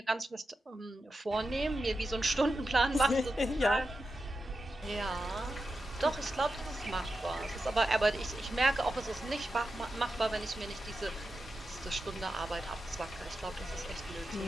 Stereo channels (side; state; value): both; normal; correlation 0.90